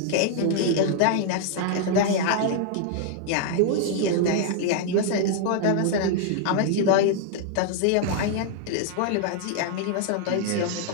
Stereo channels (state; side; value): different; both; correlation 0.00